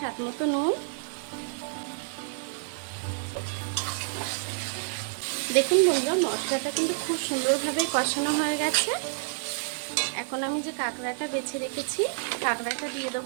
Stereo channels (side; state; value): left; silent; digital silence